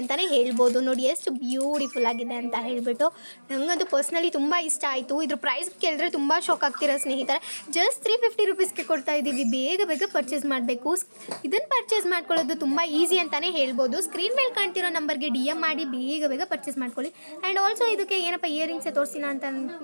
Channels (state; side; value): inverted; both; correlation -1.00